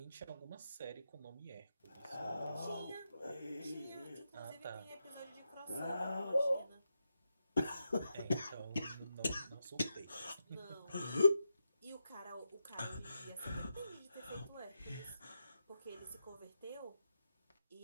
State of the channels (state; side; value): inverted; both; correlation -0.87